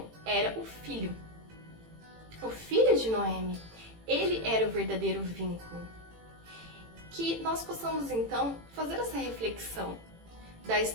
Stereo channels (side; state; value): left; late; 18 ms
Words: era o filho. O filho de Noemi, ele era o verdadeiro vínculo. Que nós possamos então fazer essa reflexão da